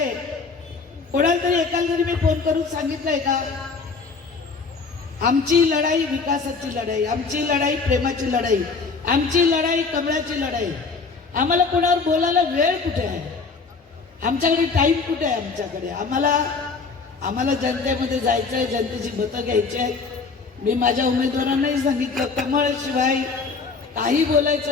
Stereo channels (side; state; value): right; quieter; 4.6 dB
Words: कोणाला तरी एकाला तरी मी फोन करून सांगितलंय का आमची लढाई विकासाची लढाई, आमची लढाई प्रेमाची लढाई, आमची लढाई कमळाची लढाई? आम्हाला कोणावर बोलायला वेळ कुठे आहे? आमच्याकडे टाइम कुठे आहे? आमच्याकडे आम्हाला जनतेमध्ये जायचं आहे, जनतेची मतं घ्यायची आहेत. मी माझ्या उमेदवारांनाही सांगितलं, कमळशिवाय काही